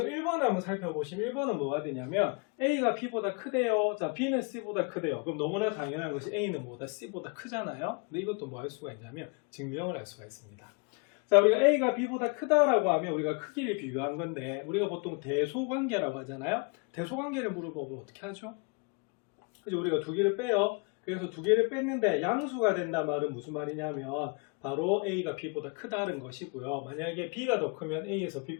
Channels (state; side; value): quieter; right; 33.0 dB